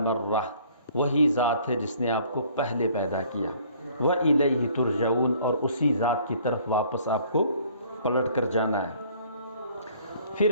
वही ज़ात है जिसने आपको पहले पैदा किया। व इलैहि तुरजऊन, और उसी ज़ात की तरफ वापस आपको पलट कर जाना है।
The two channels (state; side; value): inverted; both; correlation -0.57